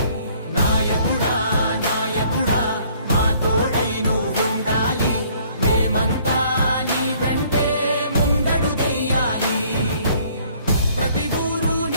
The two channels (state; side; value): inverted; both; correlation -0.60